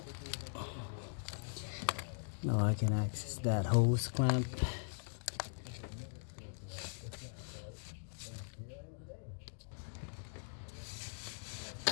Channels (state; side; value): silent; right; digital silence